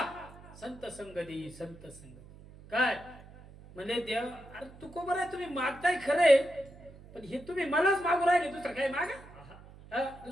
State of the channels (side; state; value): right; noise; hum, 20 dB below the sound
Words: संत संगती, संत संगती. काय म्हणजे देव, अरे तू कोबर आहे, तुम्ही मागताय खरे, पण हे तुम्ही मलाच मागू राहिले, दुसरं काय मागा?